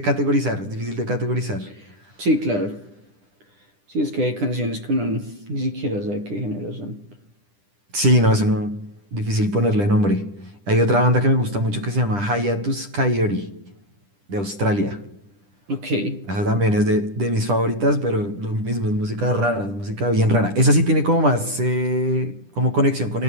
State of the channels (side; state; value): left; late; 10 ms